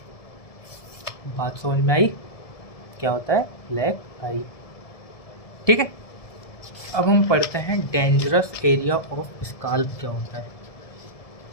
बात समझ में आई? क्या होता है? ब्लैक आई। ठीक है, अब हम पढ़ते हैं डेंजरस एरिया ऑफ स्काल्प क्या होता है।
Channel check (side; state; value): right; late; 1.7 ms